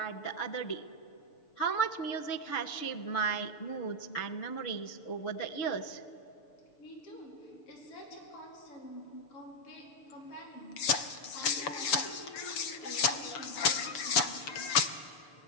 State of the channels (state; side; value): late; right; 7.0 ms